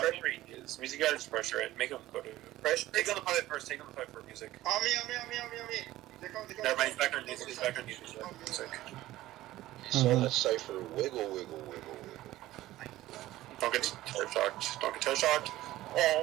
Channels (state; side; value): quieter; left; 15.7 dB